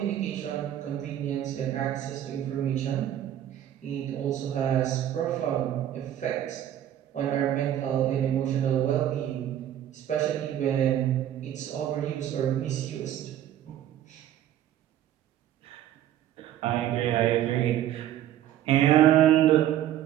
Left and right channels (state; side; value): quieter; left; 11.6 dB